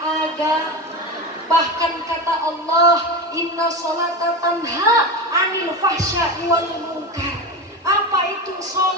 Bahkan kata Allah, inna sholata tanha anil fahsya'i wal munkar. Apa itu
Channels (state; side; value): normal; both; correlation 0.22